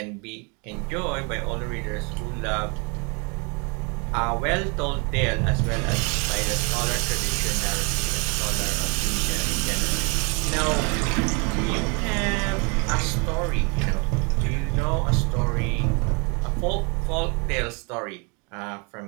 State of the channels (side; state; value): left; quieter; 33.0 dB